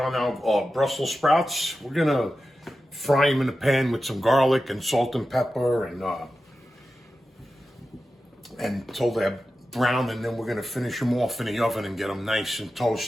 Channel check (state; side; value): normal; both; correlation 0.92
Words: our Brussels sprouts. We're going to fry them in a pan with some garlic and salt and pepper until they're brown, and then we're going to finish them off in the oven and get them nice and